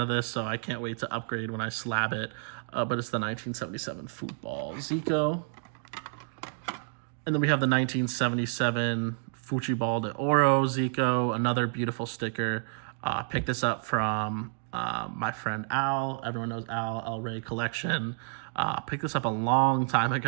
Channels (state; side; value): silent; left; 58 dB below the other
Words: of this, so I can't wait to upgrade when I slab it. But it's the 1977 Football Zico. And then we have the 1977 Futebol de Ouro Zico, another beautiful sticker. Picked this up from my friend Al. Everyone knows Al, El Rey Collection. Picked this up a long time